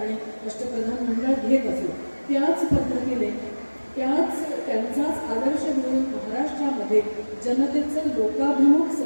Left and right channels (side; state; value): both; inverted; correlation -1.00